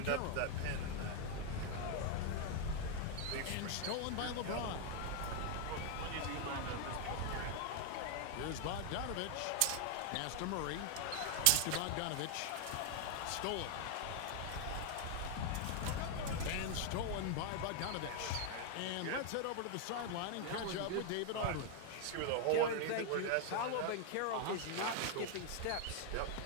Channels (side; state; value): both; different; correlation 0.00